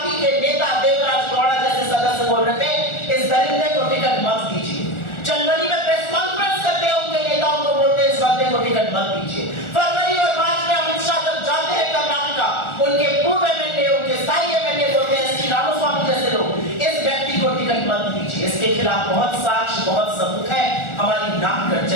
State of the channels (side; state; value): right; late; 1.4 ms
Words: के नेता देवराज गौड़ा जैसे सदस्य बोल रहे थे इस दरिंदे को टिकट मत दीजिए। जनवरी में प्रेस कॉन्फ्रेंस करते हैं, उनके नेताओं को बोलते हैं इस बंदे को टिकट मत दीजिए। फरवरी और मार्च में अमित शाह जब जाते हैं कर्नाटका, उनके पूर्व एमएलए, उनके स्थायी एमएलए बोलते हैं श्री रामास्वामी जैसे लोग इस व्यक्ति को टिकट मत दीजिए। इसके खिलाफ बहुत साक्ष्य, बहुत सबूत है, हमारी नाक कट